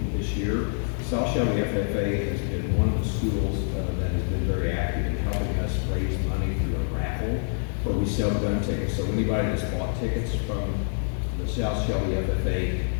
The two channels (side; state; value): right; silent; digital silence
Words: this year. South Shelby FFA has been one of the schools that has been very active in helping us raise money through a raffle where we sell gun tickets. So anybody that's bought tickets from the South Shelby FFA